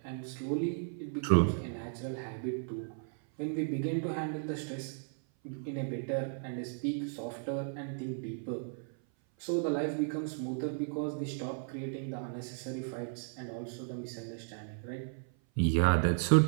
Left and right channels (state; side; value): silent; left; 55 dB below the other